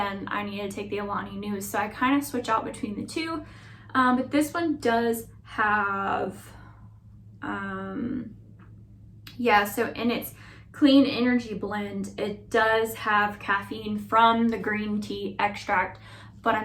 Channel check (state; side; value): identical; both; correlation 1.00